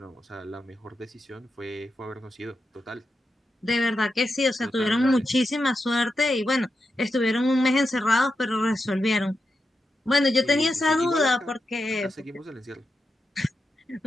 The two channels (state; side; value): normal; both; correlation 0.88